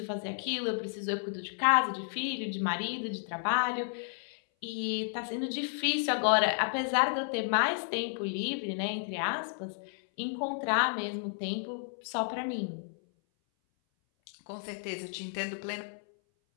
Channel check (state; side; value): silent; right; 56 dB below the other